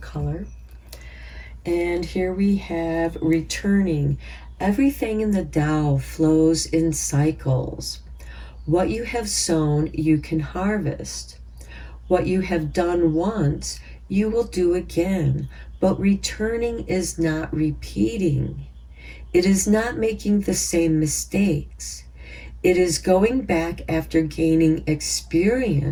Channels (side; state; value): both; identical; correlation 1.00